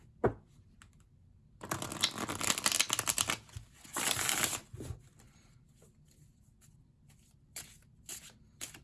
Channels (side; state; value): both; identical; correlation 1.00